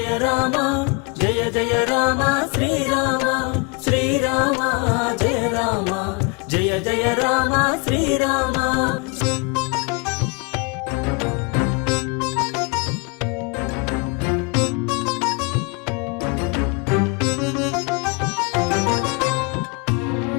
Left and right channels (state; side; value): quieter; right; 31.0 dB